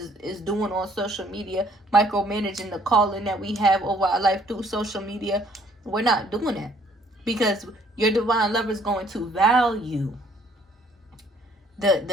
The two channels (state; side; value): normal; both; correlation 0.62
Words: is doing on social media, micromanaging the calling that we have over our life through social media. We're not doing that, because your divine lover is going to value